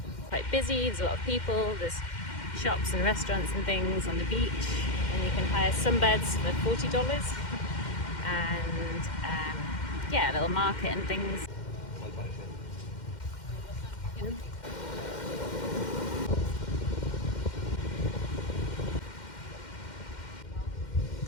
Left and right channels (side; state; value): right; late; 2.1 ms